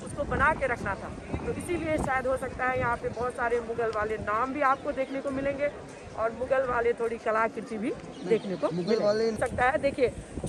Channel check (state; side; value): identical; both; correlation 1.00